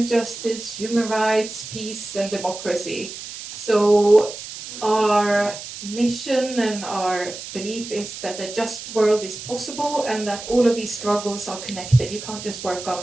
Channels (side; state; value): right; noise; hiss, 11 dB below the sound